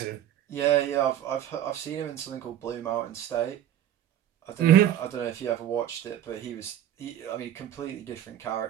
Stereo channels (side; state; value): left; quieter; 11.3 dB